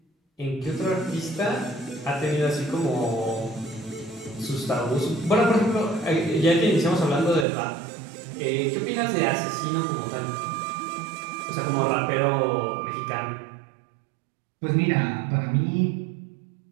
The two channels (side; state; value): left; drops out; at 7.5 s